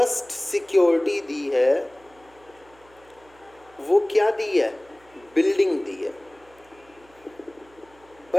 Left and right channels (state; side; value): noise; right; hum, 29 dB below the sound